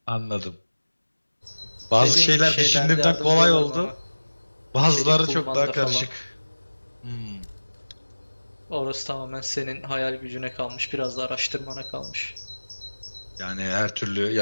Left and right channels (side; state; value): both; inverted; correlation -1.00